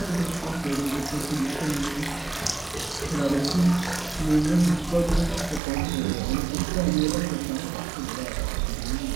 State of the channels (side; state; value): left; drops out; at 5.6 s